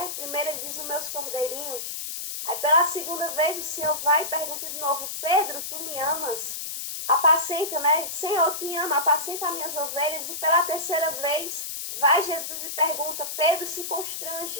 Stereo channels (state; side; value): noise; left; hiss, 6 dB below the sound